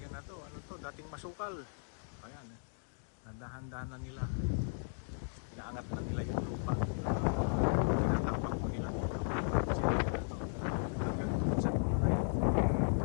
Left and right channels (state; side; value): silent; right; digital silence